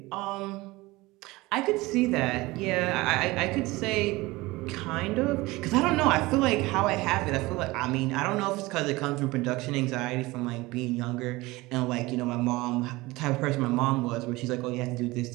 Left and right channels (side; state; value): left; quieter; 20.9 dB